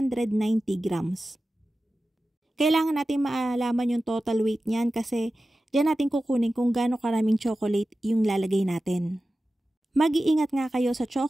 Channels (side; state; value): both; normal; correlation 0.94